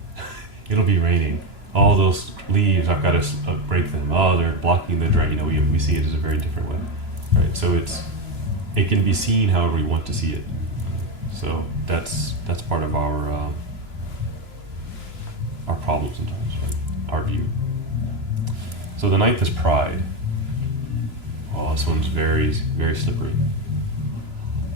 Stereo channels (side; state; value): left; late; 3.0 ms